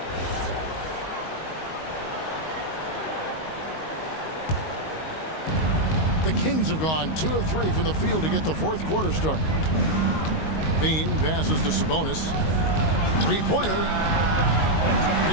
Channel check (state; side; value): late; right; 19 ms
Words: The Kings have gone 2 of 3 from the field to get the fourth quarter started. Bean passes to Sabonis. Three-pointer.